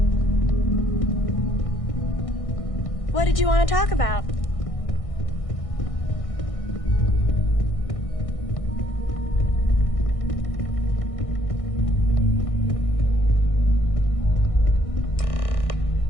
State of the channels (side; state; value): right; late; 1.6 ms